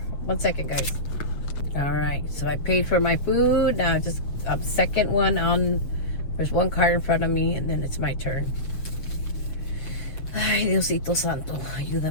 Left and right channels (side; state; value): right; late; 7.5 ms